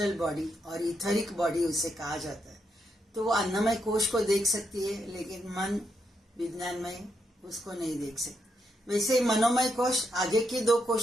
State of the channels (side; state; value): both; normal; correlation 0.80